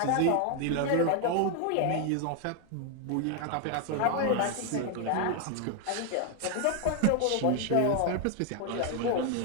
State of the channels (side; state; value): both; different; correlation 0.01